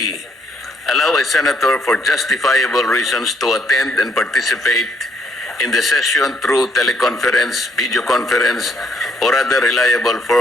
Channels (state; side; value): normal; both; correlation 0.70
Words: allow a senator for justifiable reasons to attend and participate in the session through teleconference, video conference, or other reliable